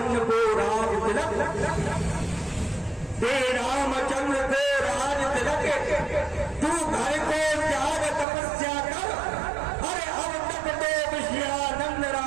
को राज तिलक, दे रामचंद्र को राज तिलक, तू घर को त्याग तपस्या कर, अरे अब तक तो विषयानंद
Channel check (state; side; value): drops out; left; at 8.2 s